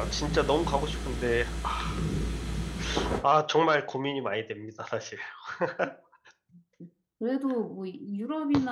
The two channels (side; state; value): both; identical; correlation 1.00